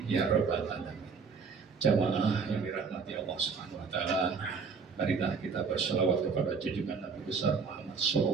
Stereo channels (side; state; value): left; quieter; 5.3 dB